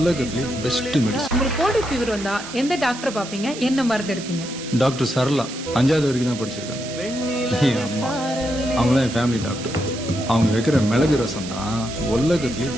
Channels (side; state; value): right; noise; hiss, 11 dB below the sound